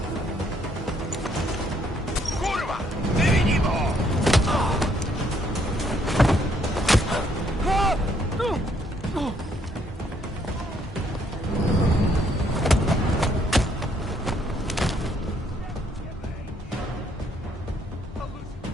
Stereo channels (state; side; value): normal; both; correlation 0.69